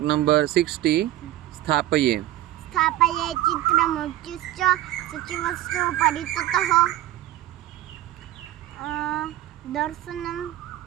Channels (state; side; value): quieter; left; 14.8 dB